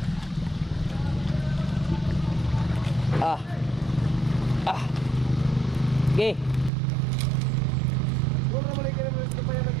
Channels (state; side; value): drops out; left; at 6.7 s